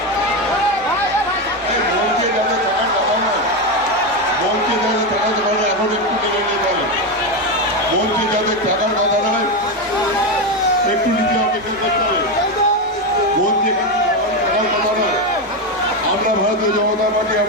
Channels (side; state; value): both; normal; correlation 0.11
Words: এখন একটু মেনে নিয়ে পারেন, বলছি যাদের টাকার কথা নয়, একটু নিজে অপেক্ষা করতে হবে। বলছি টাকার কথা নয়। আমরা ভারতীয় জনতা পার্টি,